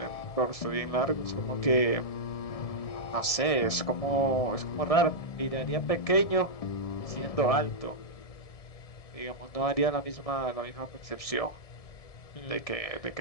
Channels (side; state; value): right; late; 1.7 ms